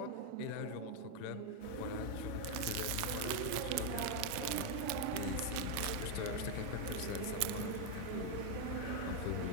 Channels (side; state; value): both; different; correlation 0.01